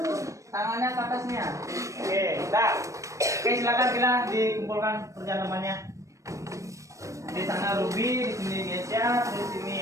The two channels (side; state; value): left; late; 0.15 ms